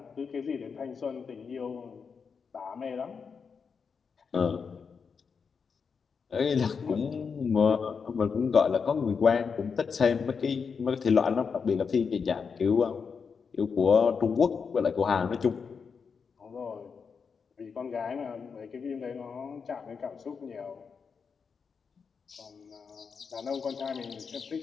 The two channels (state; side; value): quieter; right; 5.8 dB